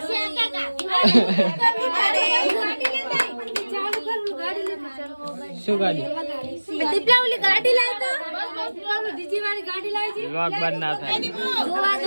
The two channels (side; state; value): both; inverted; correlation -1.00